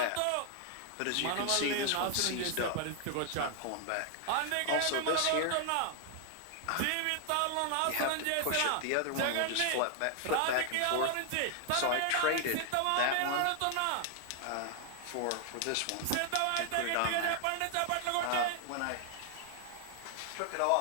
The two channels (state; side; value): different; both; correlation 0.00